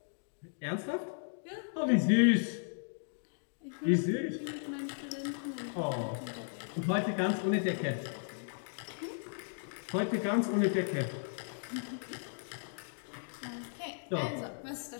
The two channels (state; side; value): silent; right; digital silence